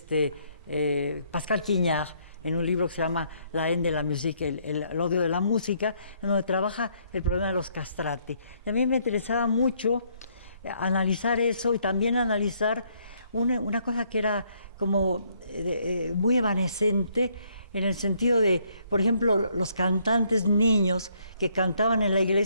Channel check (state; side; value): inverted; both; correlation -0.69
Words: Pascal Quignard, en un libro que se llama La haine de la musique, el odio de la música, en donde trabaja el problema de los castrati. Y a mí me interesaba mucho analizar eso, y también analizar una cosa que era como muy evanescente, en el sentido de, por ejemplo, los cantantes niños que cantaban en la